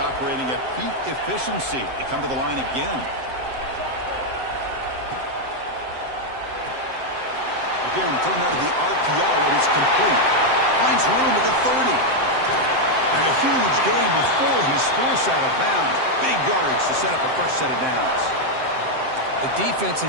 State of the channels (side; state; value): left; late; 7.7 ms